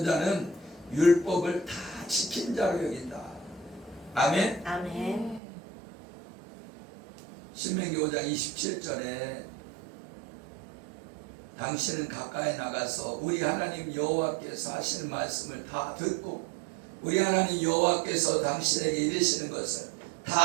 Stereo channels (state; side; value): drops out; left; at 5.4 s